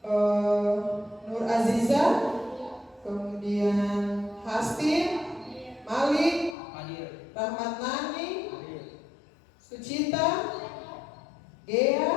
Nur Aziza, kemudian Hastin, Malik, Rahmat Nani, Sucita, Gea,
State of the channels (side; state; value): right; drops out; at 6.6 s